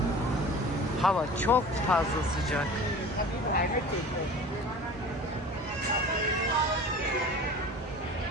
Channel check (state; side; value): normal; both; correlation 0.40